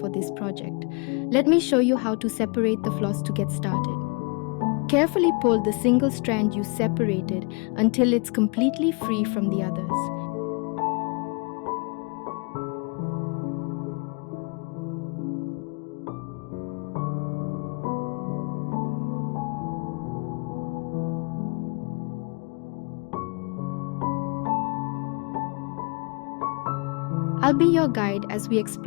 this project. Let me show you how to separate the floss to get started. Carefully pull the single strand you separated until it's completely free from the others. I'll be your guide as we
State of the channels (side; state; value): right; quieter; 32.9 dB